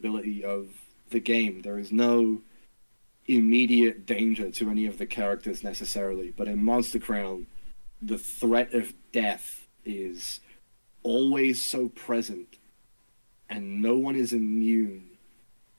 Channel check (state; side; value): inverted; both; correlation -1.00